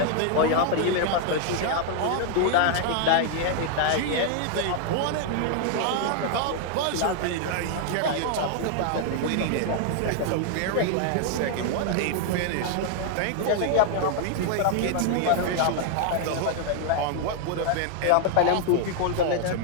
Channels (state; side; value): different; both; correlation 0.00